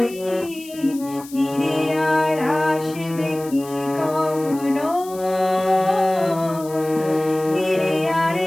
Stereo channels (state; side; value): noise; left; hiss, 18 dB below the sound